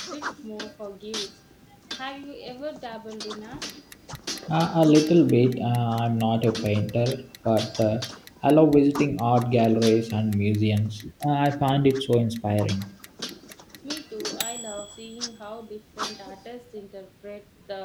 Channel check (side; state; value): both; identical; correlation 1.00